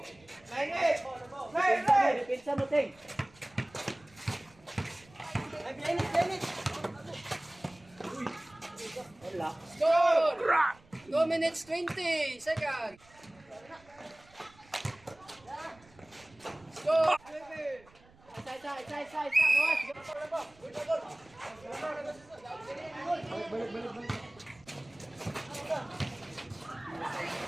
Pinsa mo, Ting. Score. 2 minutes 20 seconds. Score.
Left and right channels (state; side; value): noise; right; rumble, 27 dB below the sound